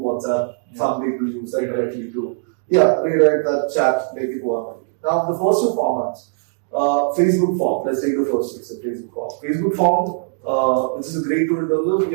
some people use that directly to, rewrite that chat, make it work. Now, the first two formats, Facebook form, let's take the first one, so Facebook form. Facebook form, which is a great tool in terms of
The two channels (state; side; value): silent; left; digital silence